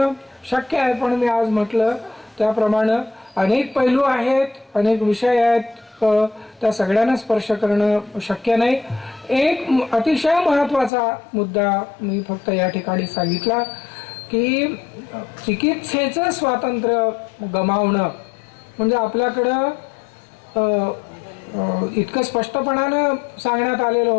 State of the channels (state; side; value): drops out; right; at 10.9 s